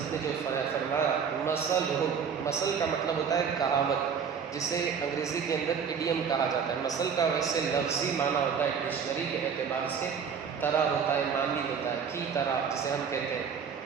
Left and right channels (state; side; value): quieter; left; 6.8 dB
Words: نے جو فرمایا، مثل کا مطلب ہوتا ہے کہاوت، جسے انگریزی کے اندر ایڈیم کہا جاتا ہے۔ مثل کا ویسے لفظی معنی ہوتا ہے ڈکشنری کے اعتبار سے، طرح ہوتا ہے، معنی ہوتا ہے، کی طرح جسے ہم کہتے ہیں،